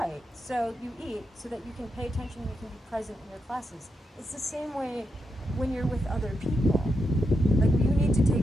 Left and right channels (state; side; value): normal; both; correlation 0.85